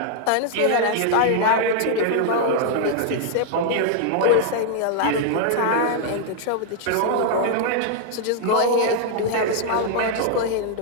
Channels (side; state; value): both; different; correlation 0.00